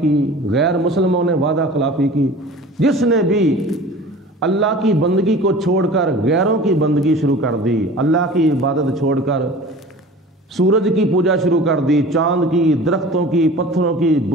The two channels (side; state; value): both; normal; correlation 0.41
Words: کی، غیر مسلموں نے وعدہ خلافی کی۔ جس نے بھی اللہ کی بندگی کو چھوڑ کر غیروں کی بندگی شروع کر دی، اللہ کی عبادت چھوڑ کر سورج کی پوجا شروع کر دی، چاند کی، درختوں کی، پتھروں کی،